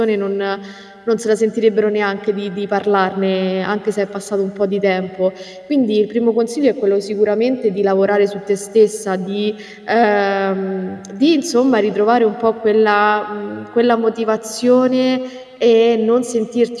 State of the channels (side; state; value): both; identical; correlation 1.00